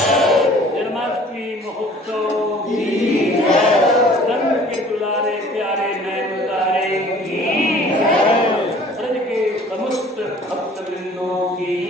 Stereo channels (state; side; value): normal; both; correlation 0.51